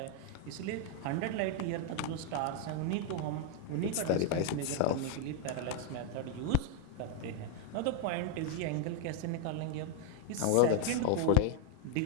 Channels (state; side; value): different; both; correlation 0.01